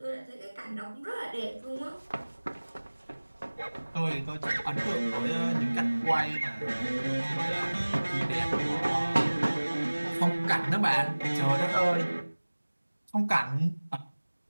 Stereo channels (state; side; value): inverted; both; correlation -1.00